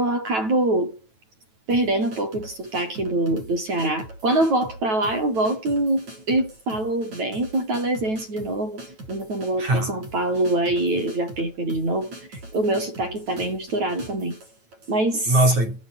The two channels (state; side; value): late; left; 9.2 ms